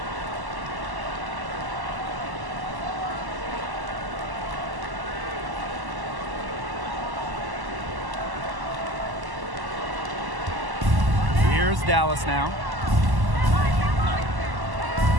Here's Dallas now.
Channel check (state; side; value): late; left; 1.1 ms